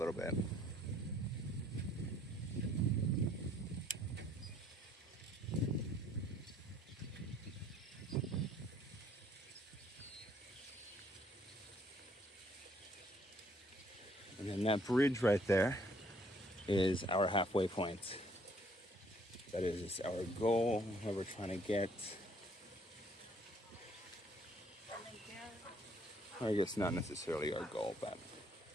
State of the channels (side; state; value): both; normal; correlation 0.63